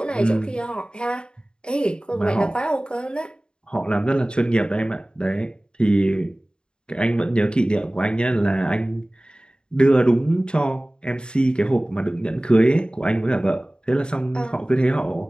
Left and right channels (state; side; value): late; right; 0.050 ms